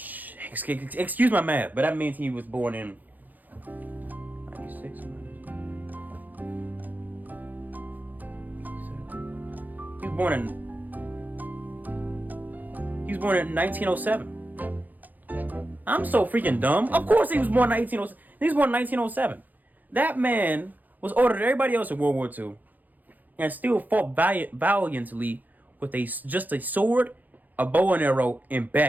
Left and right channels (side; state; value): left; late; 0.083 ms